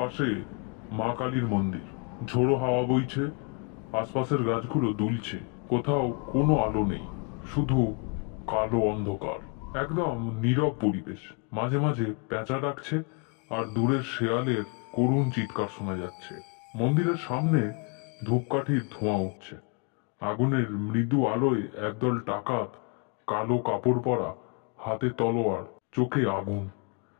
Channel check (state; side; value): quieter; right; 34.1 dB